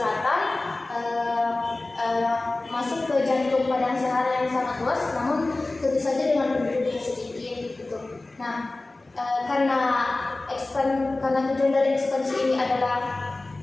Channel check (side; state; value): right; quieter; 3.0 dB